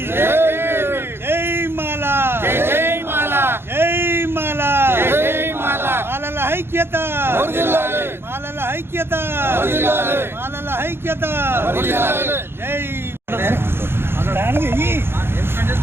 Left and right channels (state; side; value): late; left; 0.11 ms